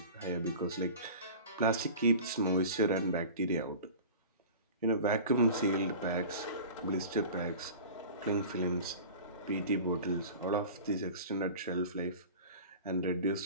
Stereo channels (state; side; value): inverted; both; correlation -0.38